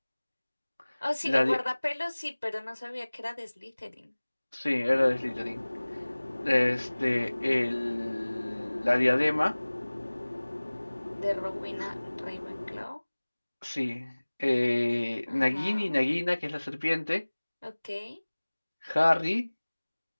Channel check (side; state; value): both; inverted; correlation -1.00